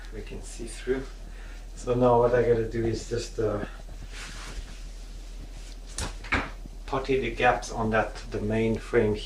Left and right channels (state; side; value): identical; both; correlation 1.00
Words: we can see through. So now what I gotta do is just putty the gaps on the main frame